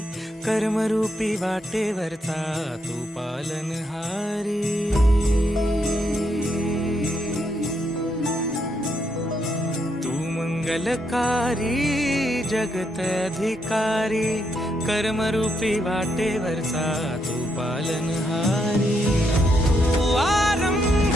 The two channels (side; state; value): both; normal; correlation 0.78